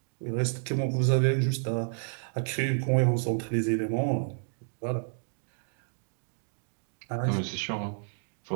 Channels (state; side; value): silent; left; digital silence